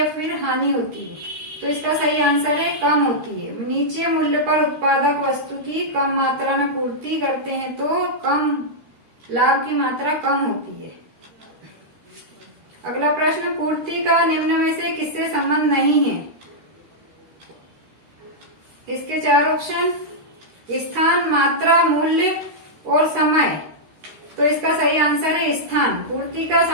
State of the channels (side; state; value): left; late; 13 ms